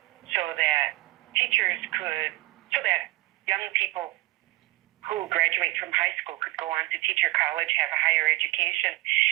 so that young people who graduate from high school could go on to teacher college, have a higher education,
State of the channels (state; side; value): quieter; left; 20.4 dB